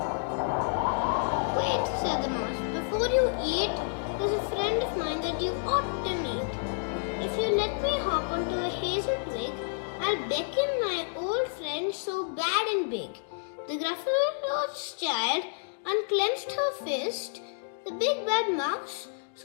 Wait, said the mouse, before you eat, there's a friend of mine that you ought to meet. If you let me hop onto a hazel twig, I'll beckon my old friend so bad and big. The Gruffalo's child unclenched her fist. The big bad mouse,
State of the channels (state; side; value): silent; right; digital silence